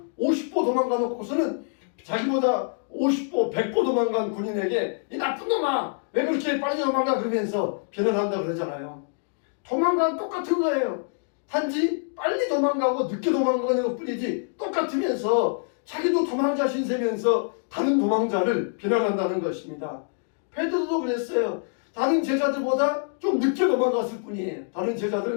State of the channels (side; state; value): right; silent; digital silence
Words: 50보 도망가 놓고서는 자기보다 50보 100보 도망간 군인에게 이 나쁜 놈아 왜 그렇게 빨리 도망가 그러면서 비난한다 그러잖아요. 도망가는 똑같은 거예요. 단지 빨리 도망가고 늦게 도망가는 것 뿐이지 똑같으면서 자기도 도망자 신세면서 다른 도망자를 비난한다는 것입니다. 베드로도 그랬어요. 다른 제자들보다 좀 늦게 도망갔을 뿐이에요. 다른